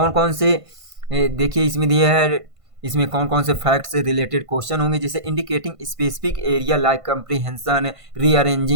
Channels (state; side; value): late; left; 1.5 ms